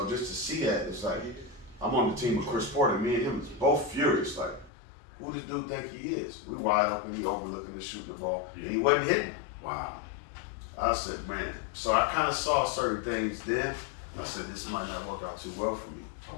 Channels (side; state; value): right; drops out; at 4.7 s